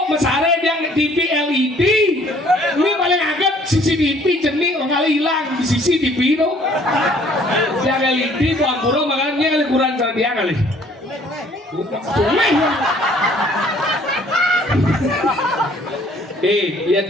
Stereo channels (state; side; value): normal; both; correlation 0.58